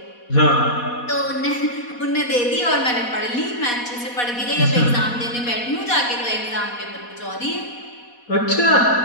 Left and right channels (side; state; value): right; late; 4.1 ms